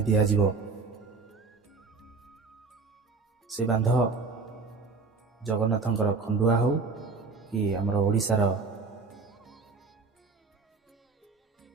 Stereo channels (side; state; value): left; quieter; 4.4 dB